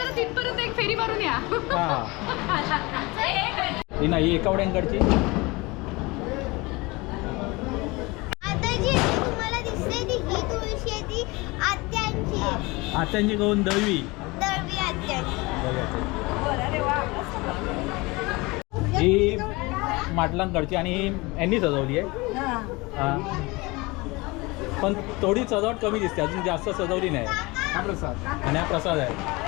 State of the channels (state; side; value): quieter; right; 24.1 dB